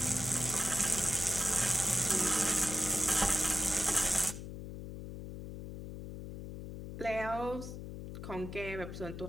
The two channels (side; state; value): left; noise; hum, 9 dB below the sound